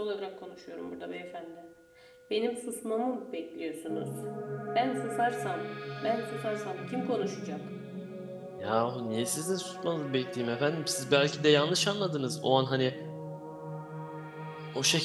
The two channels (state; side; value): identical; both; correlation 1.00